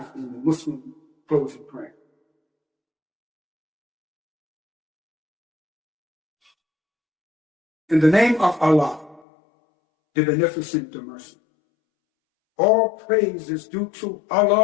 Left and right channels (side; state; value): right; drops out; at 9.2 s